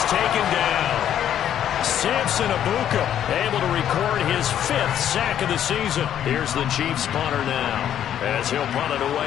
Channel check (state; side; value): quieter; right; 10.3 dB